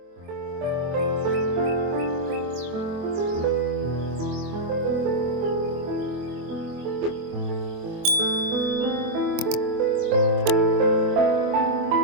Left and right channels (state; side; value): late; left; 24 ms